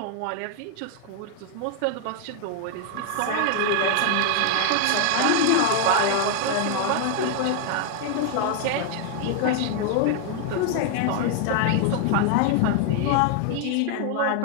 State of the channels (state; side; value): different; both; correlation 0.00